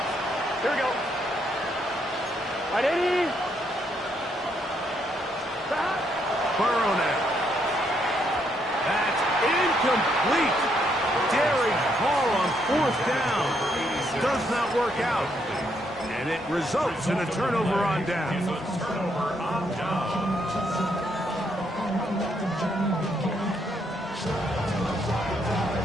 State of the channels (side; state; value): both; normal; correlation 0.74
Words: Here we go. 180. Burrow now. That's incomplete. Daring call on 4th down. Does not work out. And it results in a turnover on down.